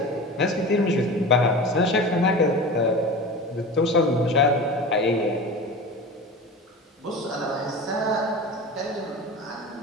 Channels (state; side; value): normal; both; correlation 0.32